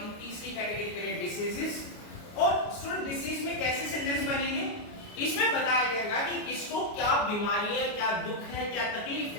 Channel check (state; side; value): late; right; 29 ms